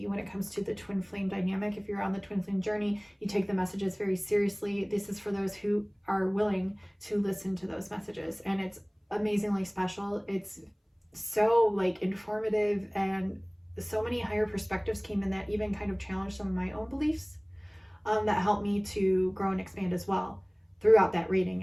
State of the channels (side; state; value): both; identical; correlation 1.00